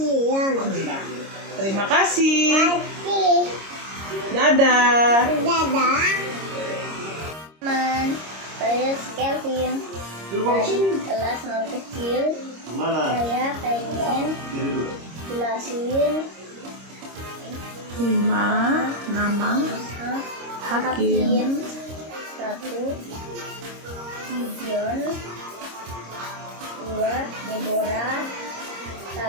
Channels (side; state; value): left; late; 26 ms